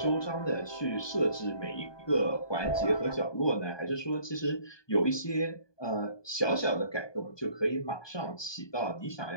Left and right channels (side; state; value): right; late; 1.2 ms